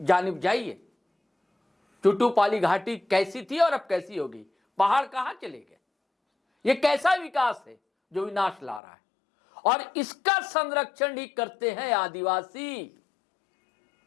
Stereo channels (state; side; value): drops out; right; at 8.8 s